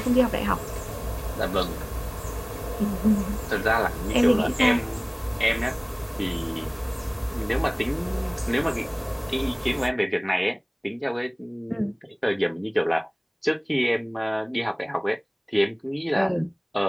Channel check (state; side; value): identical; both; correlation 1.00